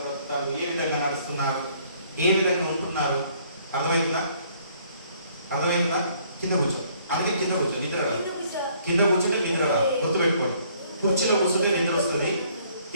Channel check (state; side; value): inverted; both; correlation -0.63